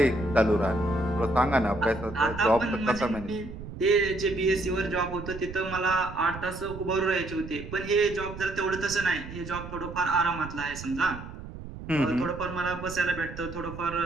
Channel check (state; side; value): noise; right; rumble, 12 dB below the sound